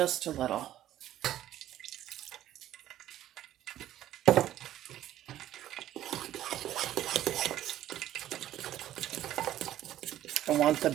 a little. I want the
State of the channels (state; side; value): quieter; left; 12.8 dB